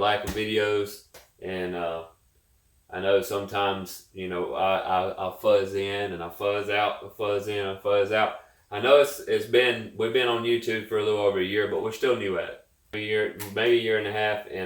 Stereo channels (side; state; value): both; identical; correlation 1.00